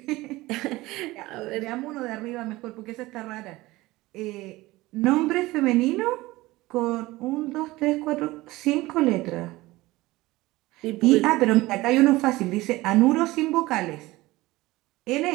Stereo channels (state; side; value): quieter; left; 19.4 dB